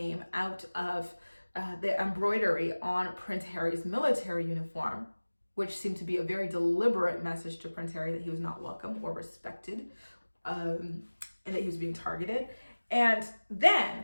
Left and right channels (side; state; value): both; inverted; correlation -1.00